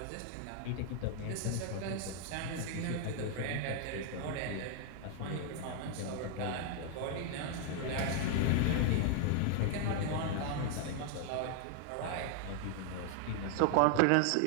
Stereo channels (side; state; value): both; different; correlation 0.00